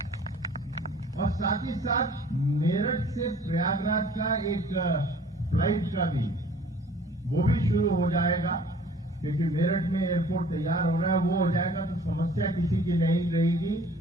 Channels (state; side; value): normal; both; correlation 0.52